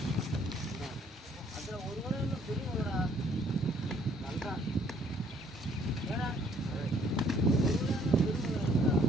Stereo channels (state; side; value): normal; both; correlation 0.63